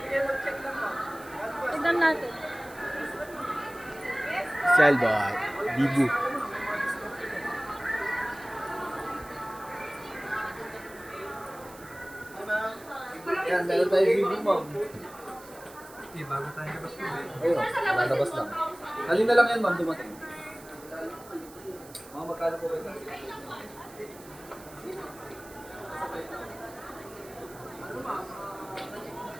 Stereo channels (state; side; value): noise; right; hiss, 20 dB below the sound